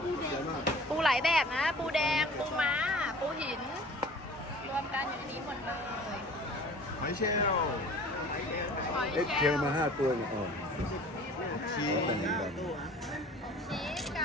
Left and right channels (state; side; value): normal; both; correlation 0.45